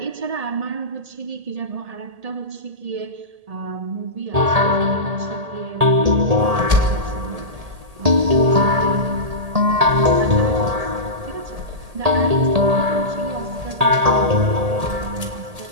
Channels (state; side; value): late; left; 1.8 ms